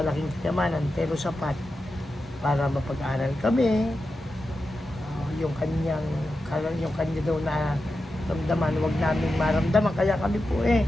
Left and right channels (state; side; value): normal; both; correlation 0.90